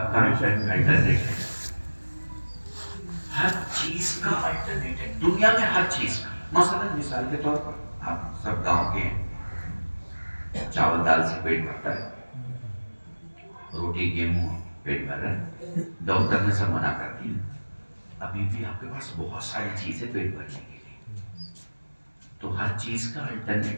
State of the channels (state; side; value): inverted; both; correlation -1.00